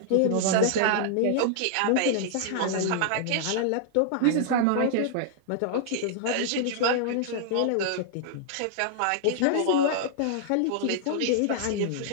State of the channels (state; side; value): different; both; correlation -0.01